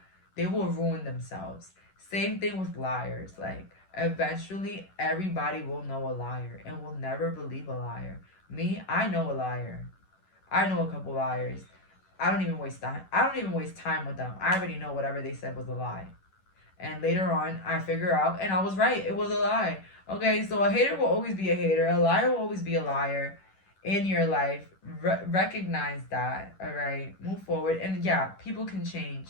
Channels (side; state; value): right; late; 11 ms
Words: ruin themselves. Same thing with liars. Like, eventually, everybody will know a liar and will never believe a liar. Me, I know a liar. I know a couple liars. I don't even waste time with them. I already know whatever they said was a lie. And later on, I figure out, and I was right. It was a lie. Okay, so a hater will always be a hater. A liar will always be a liar in your life. Recognize that, all right? Move forward. And yeah, people can